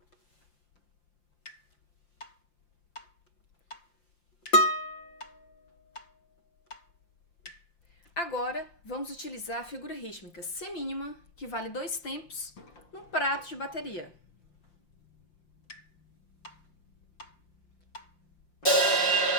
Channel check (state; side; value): late; right; 5.8 ms